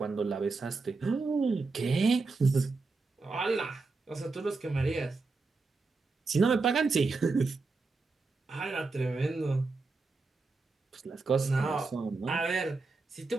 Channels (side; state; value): left; quieter; 3.9 dB